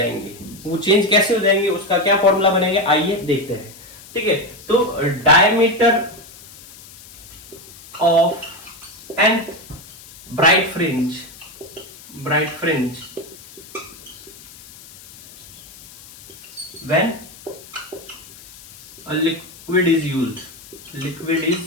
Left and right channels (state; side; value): noise; left; hiss, 20 dB below the sound